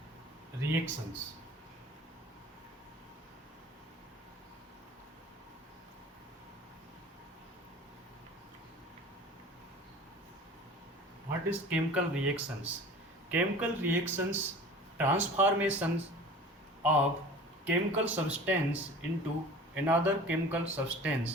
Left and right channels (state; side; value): normal; both; correlation 0.41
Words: reactions. What is chemical reactions? Chemical reactions transformations of chemical substance into another chemical